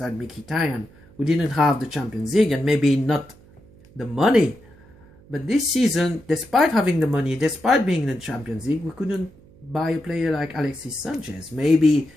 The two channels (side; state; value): right; noise; hum, 26 dB below the sound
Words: and Mkhitaryan, we didn't have the Champions League and maybe not the money. But this season, despite having the money, despite being in the Champions League, we couldn't buy a player like Alexis Sanchez. Maybe